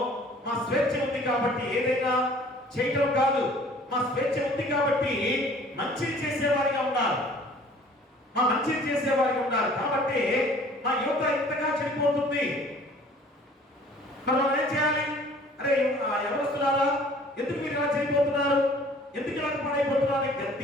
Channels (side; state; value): both; normal; correlation 0.52